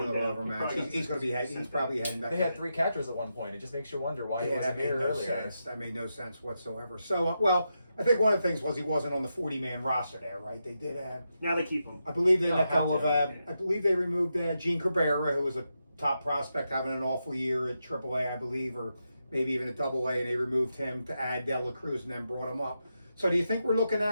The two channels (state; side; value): inverted; both; correlation -0.86